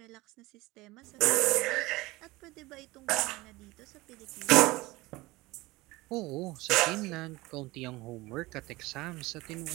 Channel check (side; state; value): left; quieter; 20.8 dB